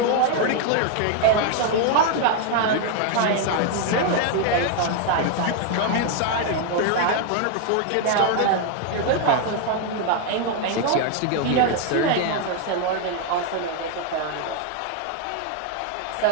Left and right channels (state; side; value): different; both; correlation 0.00